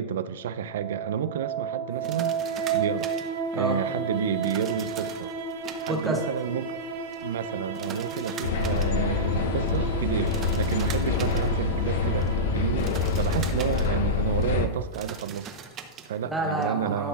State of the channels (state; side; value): normal; both; correlation -0.12